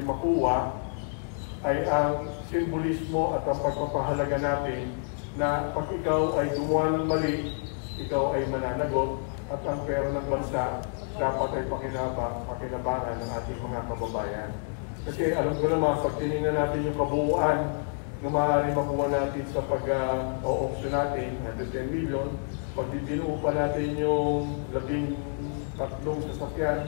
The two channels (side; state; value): right; silent; 59 dB below the other